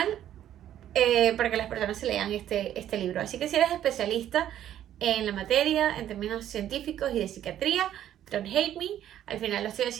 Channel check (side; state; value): left; quieter; 11.4 dB